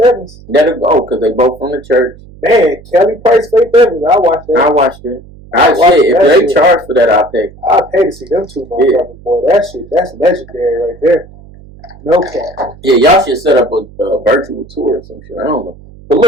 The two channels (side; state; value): right; noise; hum, 21 dB below the sound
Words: Evans. That'll go, because they both from the church. Man, Kelly Price, Faith Evans, I watched that. I watched it. If they charge for that, I'll pay. I'll pay to see them two motherfuckers, boy. That shit, that's legendary right there. No cap. Yeah, y'all should set up a virtual tour or some shit. I don't know. But